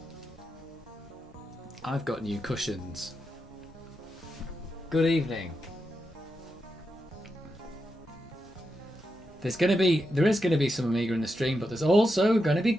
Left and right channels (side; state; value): both; normal; correlation 0.86